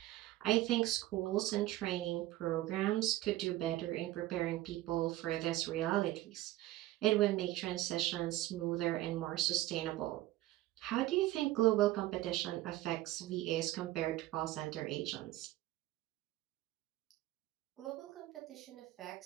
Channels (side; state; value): left; quieter; 15.9 dB